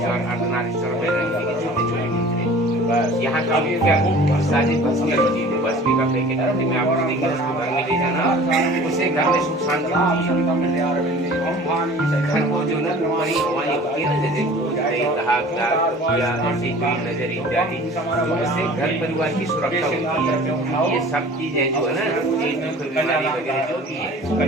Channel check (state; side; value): normal; both; correlation 0.45